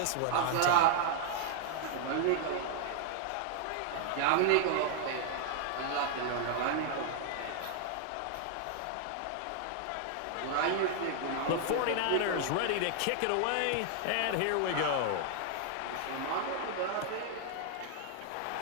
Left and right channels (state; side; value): different; both; correlation 0.00